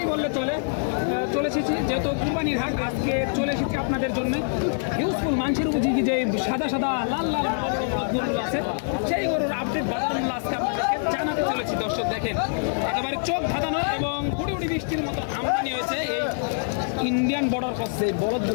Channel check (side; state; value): right; silent; digital silence